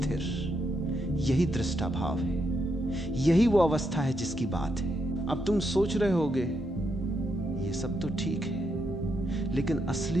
यही दृष्टा भाव है, यही वो अवस्था है जिसकी बात है। अब तुम सोच रहे होगे ये सब तो ठीक है, लेकिन असली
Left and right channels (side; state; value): both; normal; correlation 0.80